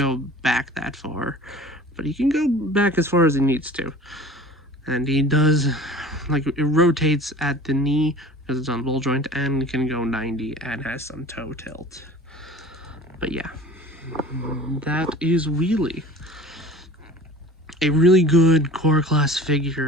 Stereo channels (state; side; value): normal; both; correlation 0.42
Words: back that far, but he can go back as far as he needs to. And he does, like, it rotates at the knee because it's on ball joint, and can go 90 and has some toe tilt. But yeah, that is Wheelie. A really good core class